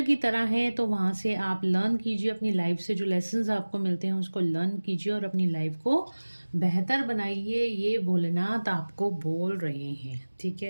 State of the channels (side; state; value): both; inverted; correlation -1.00